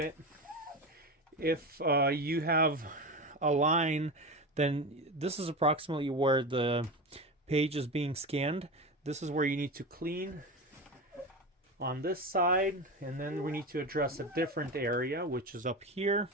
If you have a line, then this is approximately where the page is being scanned. This is where you need to clean on this side, and then we need to address a different area, which is up here.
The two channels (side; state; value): both; normal; correlation 0.23